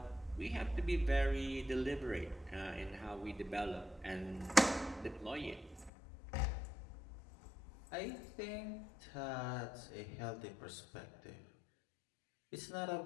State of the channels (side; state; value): right; drops out; at 5.9 s